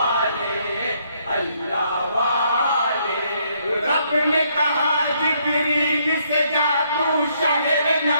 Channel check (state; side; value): inverted; both; correlation -0.70